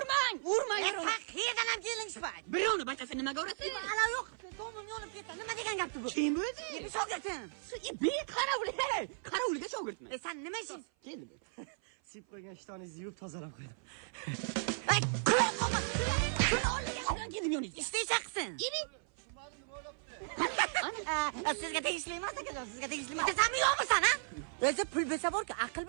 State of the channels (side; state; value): left; silent; 54 dB below the other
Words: Qayerdan ham kelingishmaydi. Birovni bachasi nimaga urasiz? Ala yo'q, tomim yonib ketdi. Nima degan gapti bu? Kim o'zi? Shogirdsan. Qarovulga shogirdman. Sen nima ishing? Keldi. Sip qo'ygan ishtoningizni yuvib tozalab qo'ydim. Ay, kulib qolma. Shuni olgan. Qanday keldim yoningizga? Ishtaychaqsin. Ibi. Sizga tegishli emas ekan, sizga tegishli emas. Sen yo'qmisan, ha? O'zi pul bo'lsa borku, aql